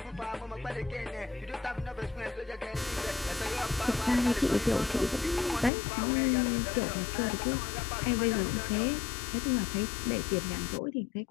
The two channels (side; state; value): right; drops out; at 5.7 s